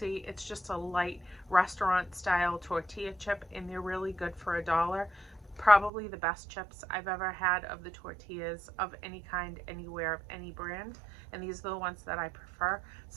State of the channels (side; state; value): left; drops out; at 5.9 s